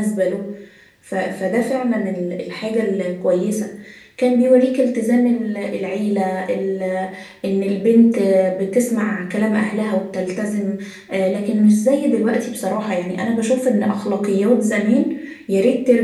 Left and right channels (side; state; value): both; identical; correlation 1.00